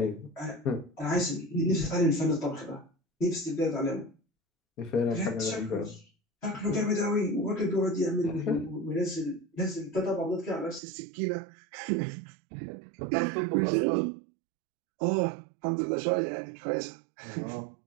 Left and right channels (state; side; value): drops out; left; at 10.8 s